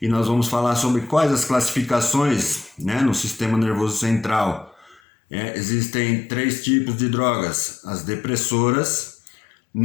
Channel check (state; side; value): drops out; right; at 5.0 s